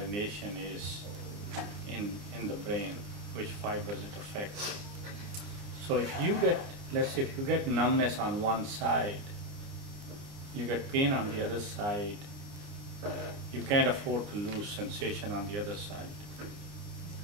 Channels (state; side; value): late; left; 29 ms